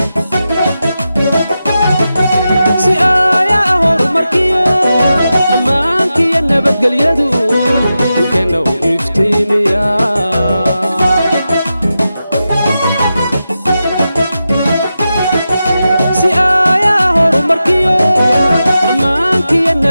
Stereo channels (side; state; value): both; inverted; correlation -0.91